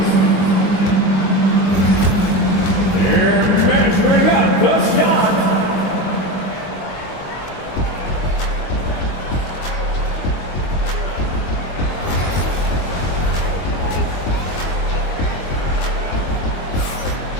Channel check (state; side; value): late; right; 22 ms